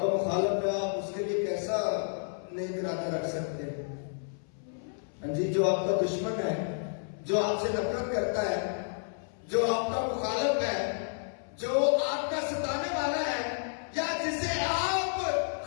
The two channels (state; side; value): silent; right; 57 dB below the other